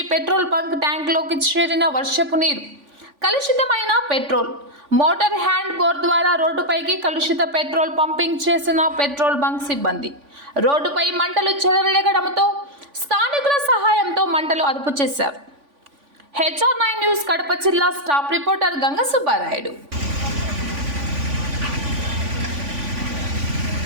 పెట్రోల్ బంక్ ట్యాంక్లోకి చేరిన వర్షపు నీరు, కలుషితమైన పెట్రోల్. మోటార్ హ్యాండ్ బోర్ ద్వారా రోడ్డుపైకి కలుషిత పెట్రోల్ పంపింగ్ చేసిన పెట్రోల్ బంక్ సిబ్బంది రోడ్డుపై మంటలు చెలరేగడంతో స్థానికుల సహాయంతో మంటలు అదుపు చేశారు. HR9 న్యూస్ కడప జిల్లా స్టాఫ్ రిపోర్టర్ గంగ సుబ్బారాయుడు.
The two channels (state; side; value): late; left; 3.5 ms